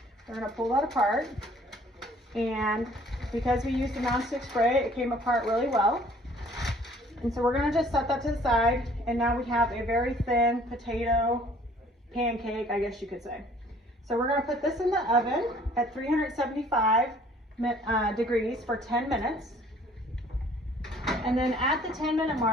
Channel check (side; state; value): both; normal; correlation 0.56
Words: we're going to pull that apart, and because we used the nonstick spray, it came apart really well. And so we're going to just set that to the side, and now we have a very thin potato pancake, I guess you could say. So we're going to put this in the oven at 375 degrees for 10 minutes. And then at the 10-minute